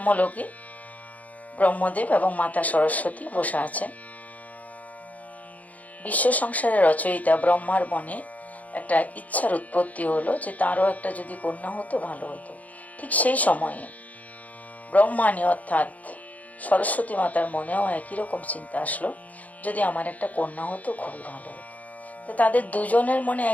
ব্রহ্মদেব এবং মাতা সরস্বতী বসে আছেন। বিশ্ব সংসারের রচয়িতা ব্রহ্মার মনে একটা ইচ্ছার উৎপত্তি হলো যে তারও একটা যদি কন্যা হতো ভালো হতো। ঠিক সেই সময়ে ব্রহ্মাণী অর্থাৎ সরস্বতী মাতার মনেও একই রকম চিন্তা আসলো, যদি আমার একটা কন্যা হতো খুবই ভালো হতো। তো তাদের দুজনের মনে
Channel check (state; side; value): late; right; 0.075 ms